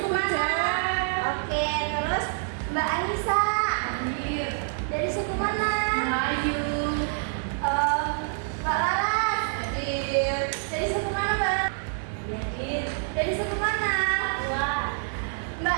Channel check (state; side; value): silent; left; 56 dB below the other